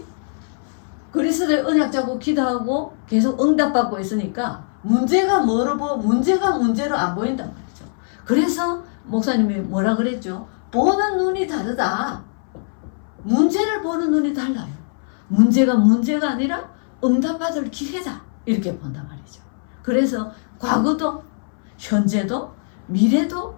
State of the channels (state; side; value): silent; right; 62 dB below the other